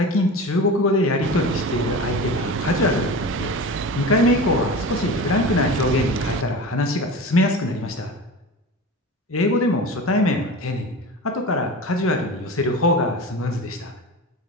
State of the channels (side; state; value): both; normal; correlation 0.31